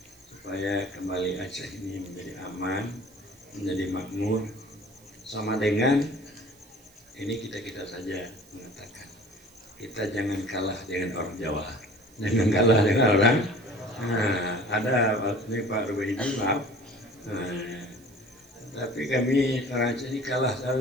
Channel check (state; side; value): noise; right; hiss, 27 dB below the sound